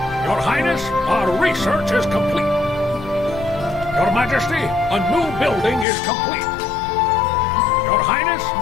Your Highness, our research is complete. Your Majesty, a new building is complete. Your Highness,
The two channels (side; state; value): right; drops out; at 5.9 s